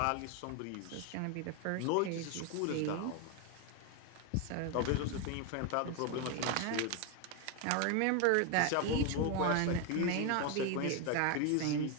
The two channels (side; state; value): both; different; correlation 0.01